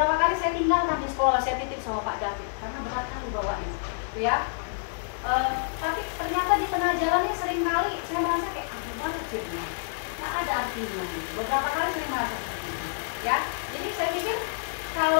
kali saya tinggalkan di sekolah, saya titip sama Pak David karena berat kali bawanya gitu ya. Tapi ternyata di tengah jalannya sering kali saya merasa kayak banget jadi ada artinya gitu. Beberapa kali saya merasa seperti itu ya. Jadi saya pikir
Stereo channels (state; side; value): silent; right; digital silence